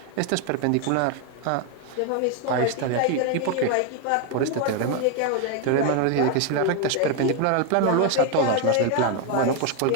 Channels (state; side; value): different; both; correlation 0.01